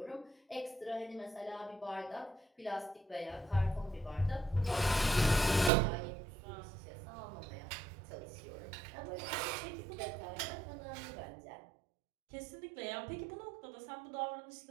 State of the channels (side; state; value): left; drops out; at 5.7 s